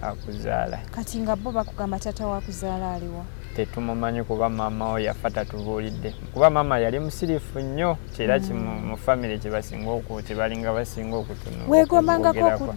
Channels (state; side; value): silent; right; 62 dB below the other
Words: akuzaala. Kati nga bo bakugamba taata wo akuzaala aliwa? Tetumumanyi kuba maama we yafa tatubuulidde kuba maama yali musirifu nnyo kyera mu famire kyebalinga basinga okwogerako.